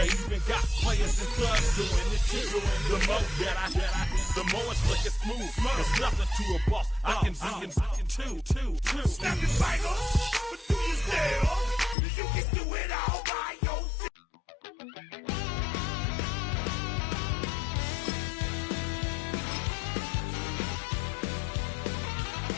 even got players and thugs doing it too. The more that the more it's looking smooth. There's nothing to a boss. I can see two. Snap your fingers, but do you still? You can do it all by yourself.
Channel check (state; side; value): drops out; right; at 12.0 s